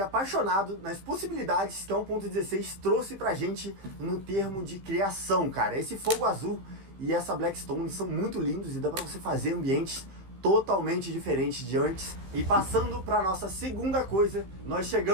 apaixonado nas possibilidades que a 1.16 trouxe pra gente no termo de criação, cara. Esse fogo azul e essa Blackstone são muito lindos e dá pra você fazer ambientes totalmente diferentes de antes. E passando pra nossa segunda coisa, nós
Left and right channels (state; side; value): late; left; 16 ms